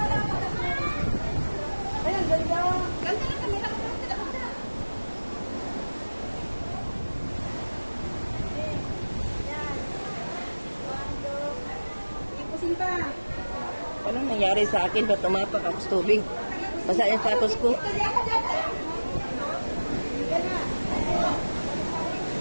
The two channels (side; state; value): both; inverted; correlation -1.00